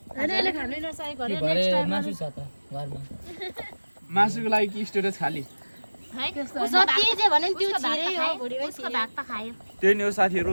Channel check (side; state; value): both; inverted; correlation -1.00